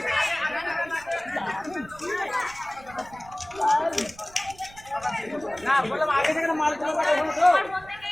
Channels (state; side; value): noise; right; rumble, 22 dB below the sound